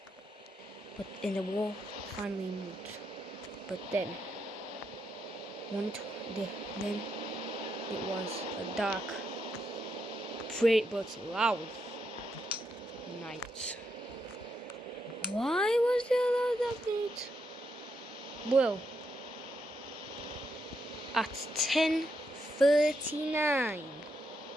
and the wall finally moved. But then it was a dark, but loud night. Why was there a loud night? Well, at 10:39,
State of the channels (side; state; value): both; normal; correlation 0.81